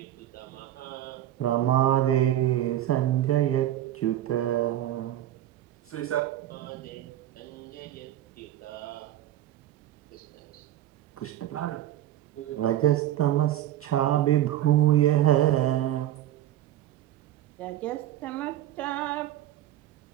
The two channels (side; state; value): left; quieter; 12.9 dB